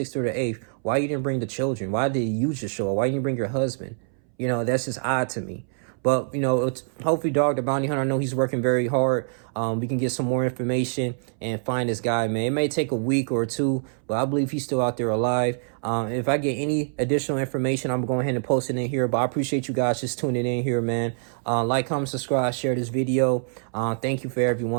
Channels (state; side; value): silent; left; 62 dB below the other